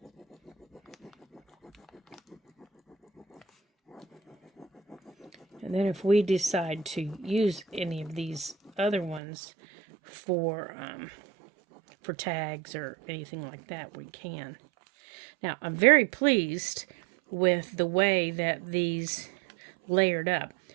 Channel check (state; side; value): drops out; left; at 9.2 s